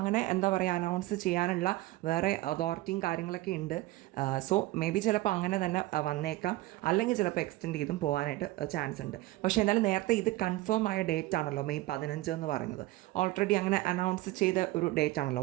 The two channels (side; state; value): left; quieter; 18.0 dB